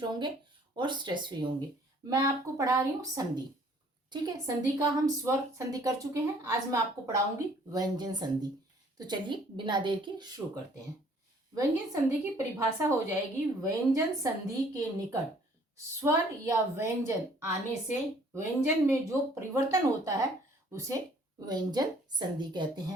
होंगे और स्ट्रेस फ्री होंगे। मैं आपको पढ़ा रही हूँ संधि। ठीक है, संधि का हम स्वर संधि कर चुके हैं। आज मैं आपको पढ़ाऊंगी व्यंजन संधि। तो चलिए बिना देर के शुरू करते हैं। व्यंजन संधि की परिभाषा हो जाएगी, व्यंजन संधि के निकट स्वर या व्यंजन आने से व्यंजन में जो परिवर्तन होता है उसे व्यंजन संधि कहते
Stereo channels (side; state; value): both; normal; correlation 0.58